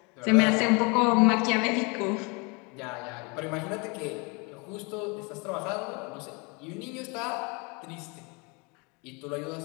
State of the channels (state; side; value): quieter; right; 30.1 dB